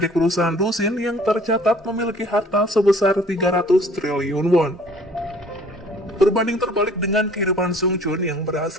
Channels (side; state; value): both; normal; correlation 0.54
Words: perusahaan Dusin yang tercatat memiliki harta sebesar 300 triliun won. Berbanding terbalik dengan kehidupan Sung Chun yang